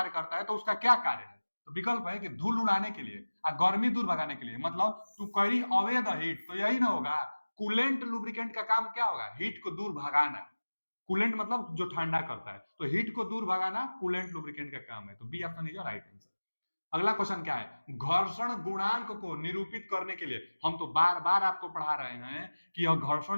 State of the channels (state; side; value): inverted; both; correlation -1.00